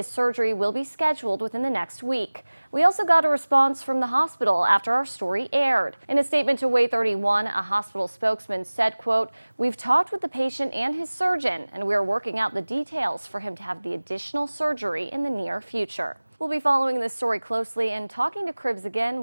surgery will be scheduled within the next week. We also got a response from the hospital after our story aired. In a statement to Way 31, a hospital spokesman said, quote, "We've talked with the patient and his surgeon, and we are working out the details for him to have the additional surgery in the near future." We'll be following this story closely and talking to Cribbs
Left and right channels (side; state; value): both; inverted; correlation -1.00